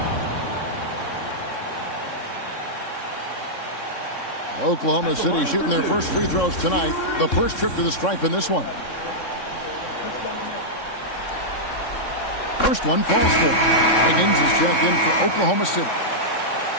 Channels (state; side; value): late; right; 3.6 ms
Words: Oklahoma City shooting their first free throws tonight. The first trip to the stripe in this one. First one falls for. Higgins is checked in for Oklahoma City.